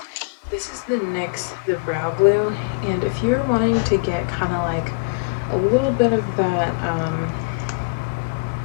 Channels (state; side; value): quieter; right; 31.7 dB